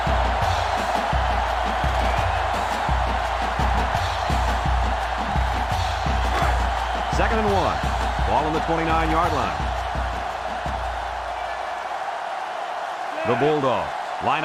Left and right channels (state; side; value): identical; both; correlation 1.00